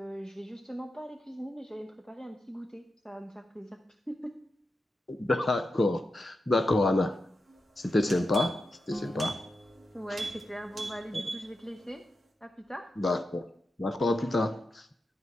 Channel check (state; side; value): normal; both; correlation 0.89